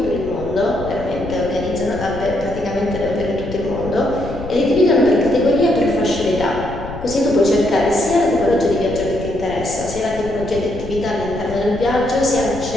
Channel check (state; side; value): noise; left; rumble, 11 dB below the sound